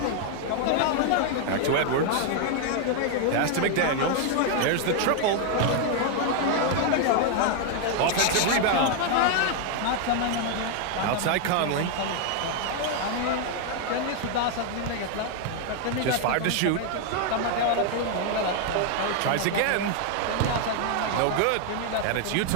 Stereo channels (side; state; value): both; different; correlation 0.00